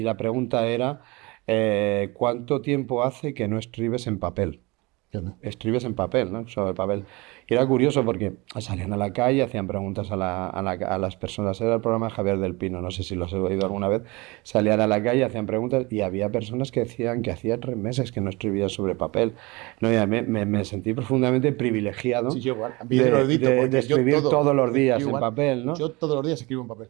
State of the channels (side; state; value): left; quieter; 24.5 dB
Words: la pregunta era, ¿cuánto tiempo hace que no escribes en papel? Escribes en papel, ¿no? Sobre papel. Y era curioso porque salían a la calle, hacían preguntas a las personas. Era el programa de Javier del Pino, no sé si lo has oído alguna vez. Salían a la calle, hacían preguntas y había personas que decían que hacía 3 meses que no escribían sobre papel. No, y me sentí profundamente privilegiado Sí, yo igual. Yo lo he dicho de porque escribir todos los yo días en igual, papel, ¿no? yo todos los días escribo en papel.